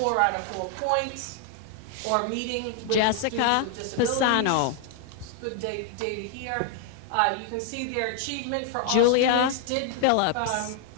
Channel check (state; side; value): different; both; correlation 0.00